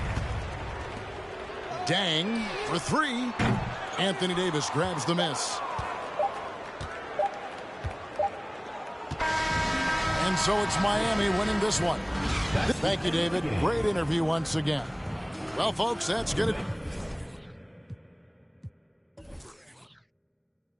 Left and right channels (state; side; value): identical; both; correlation 1.00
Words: Dang for 3. Anthony Davis grabs the miss. And so it's Miami winning this one. Thank you, David. Great interview once again. Well, folks, that's going to...